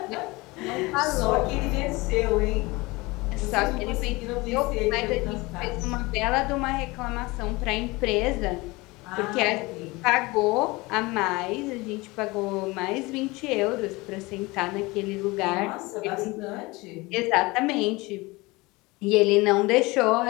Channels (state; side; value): quieter; right; 23.0 dB